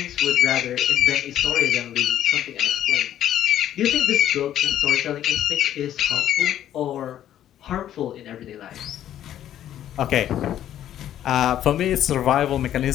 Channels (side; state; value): right; quieter; 11.4 dB